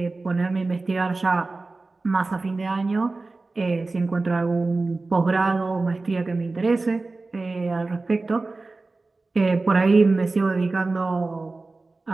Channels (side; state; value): left; quieter; 3.5 dB